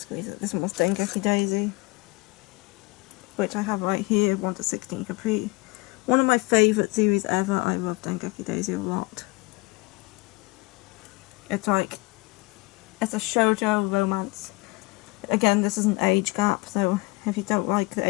it. This one was Dengeki Daisy, which I have right here, 1-16 complete. One of my favourite series ever. I love Dengeki Daisy a lot. It's a shoujo romance. Again, this is an age gap, so if you don't like the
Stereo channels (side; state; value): right; quieter; 25.3 dB